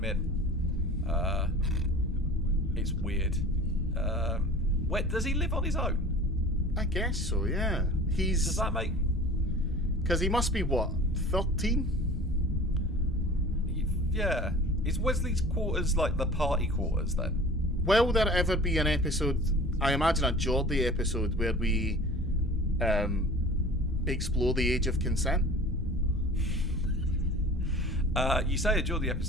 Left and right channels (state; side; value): normal; both; correlation 0.42